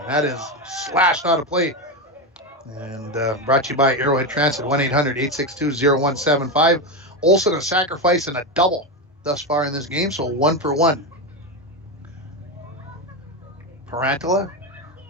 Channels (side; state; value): both; normal; correlation 0.13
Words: That is slashed out of play. And brought to you by Arrowhead Transit, 1-800-862-0175. Olsen a sacrifice and a double thus far in this game, so 1 for 1. Parantala